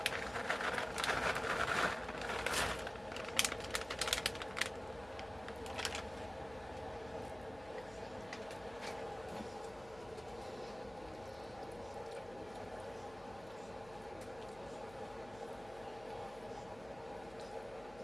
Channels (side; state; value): left; noise; hum, 19 dB below the sound